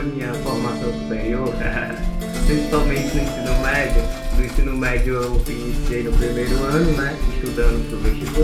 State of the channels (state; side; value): identical; both; correlation 1.00